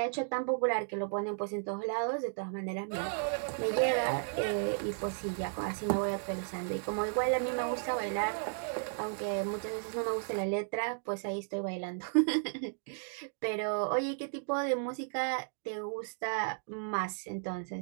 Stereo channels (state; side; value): silent; left; digital silence